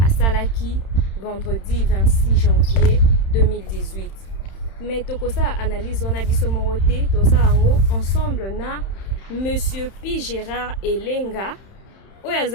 à Salaki vendredi 26 janvier 2018. Mais tokosala analyse wana biso morote tokosala ngo ensemble na Monsieur Pi Gérard Elenga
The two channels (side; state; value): right; late; 31 ms